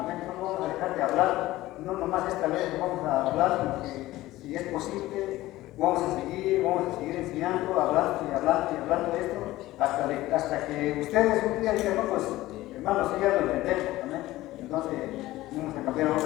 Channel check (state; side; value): quieter; right; 16.9 dB